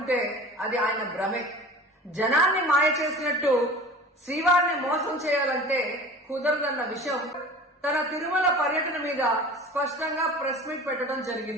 అది ఆయన భ్రమే. జనాన్ని మాయ చేసినట్టు శ్రీవారిని మోసం చేయాలంటే కుదరదన్న విషయం తన తిరుమల పర్యటన మీద స్పష్టంగా ప్రెస్ మీట్ పెట్టడం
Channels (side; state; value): both; normal; correlation 0.39